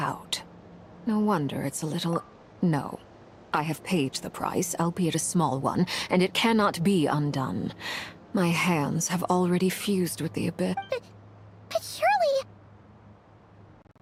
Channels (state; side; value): identical; both; correlation 1.00